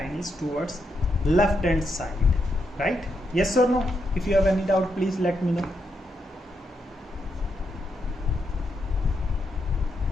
is towards left hand side, right? Yes or no? If you have any doubt, please let me know.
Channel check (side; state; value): both; normal; correlation 0.81